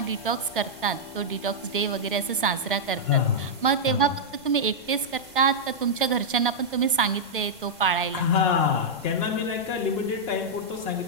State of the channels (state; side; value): noise; right; rumble, 28 dB below the sound